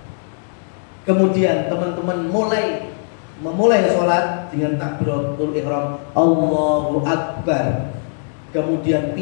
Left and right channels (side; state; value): right; silent; digital silence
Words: kemudian teman-teman memulai sholat dengan takbiratul ihram Allahu Akbar, kemudian